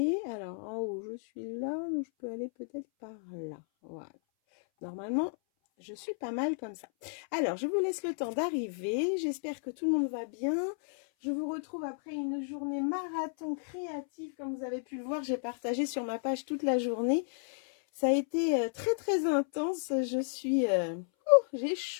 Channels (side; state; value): right; silent; 56 dB below the other